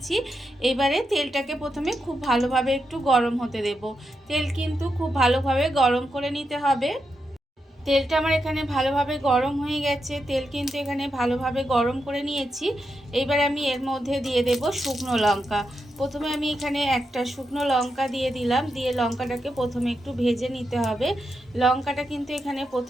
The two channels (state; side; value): normal; both; correlation 0.85